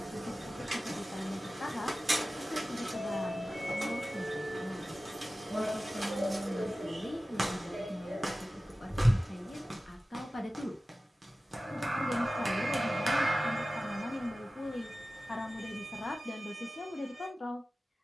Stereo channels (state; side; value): normal; both; correlation 0.96